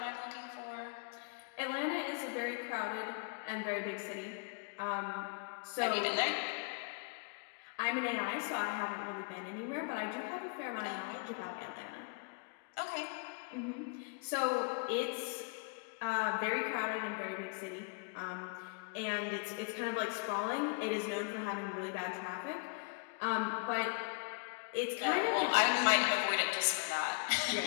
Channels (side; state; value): right; quieter; 35.4 dB